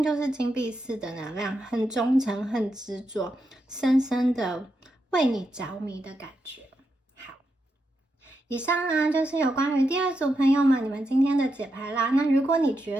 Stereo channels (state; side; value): normal; both; correlation 0.85